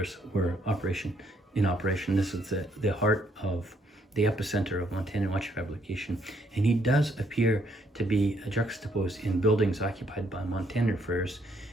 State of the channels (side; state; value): both; normal; correlation 0.71